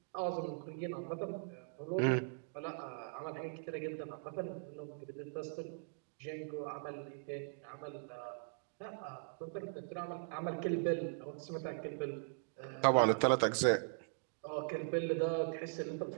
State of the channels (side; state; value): left; silent; digital silence